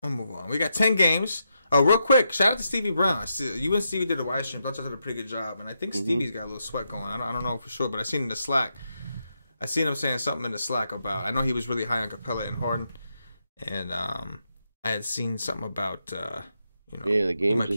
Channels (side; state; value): both; inverted; correlation -0.83